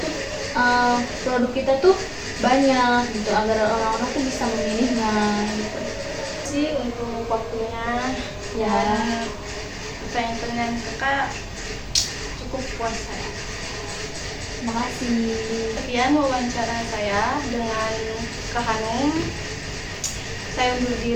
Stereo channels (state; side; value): identical; both; correlation 1.00